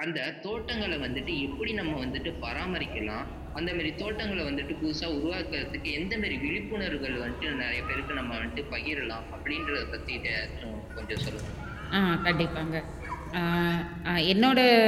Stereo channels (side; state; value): both; identical; correlation 1.00